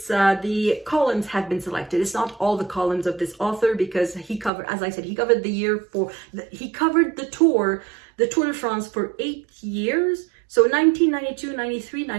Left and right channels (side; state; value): left; drops out; at 4.5 s